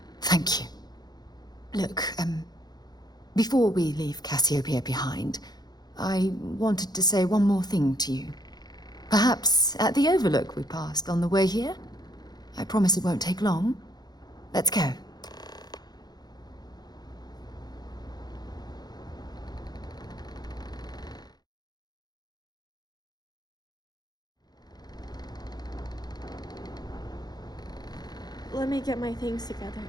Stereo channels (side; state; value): right; late; 0.19 ms